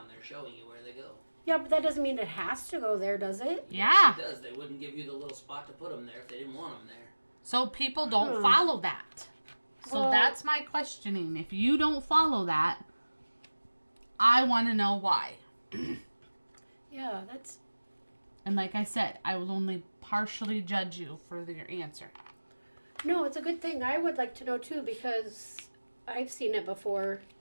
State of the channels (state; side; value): inverted; both; correlation -1.00